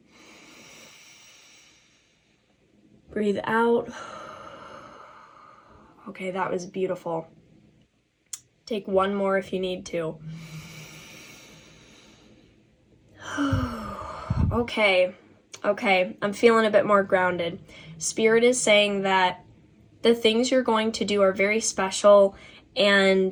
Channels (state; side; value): identical; both; correlation 1.00